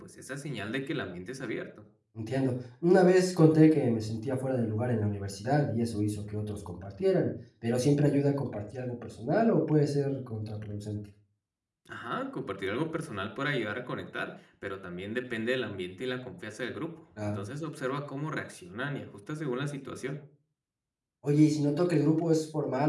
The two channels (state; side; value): identical; both; correlation 1.00